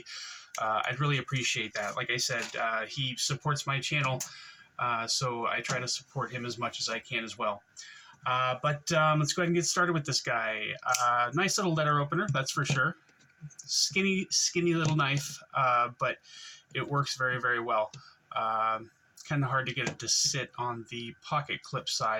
I'd really appreciate that. Like I said, he supports my channel, so I try to support him as much as I can as well. But let's go ahead and get started with this guy. Nice little letter opener, that's for sure. Skinny little knife, but it works very, very well. Kind of hard to get it to sit on the pocket clip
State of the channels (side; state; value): both; identical; correlation 1.00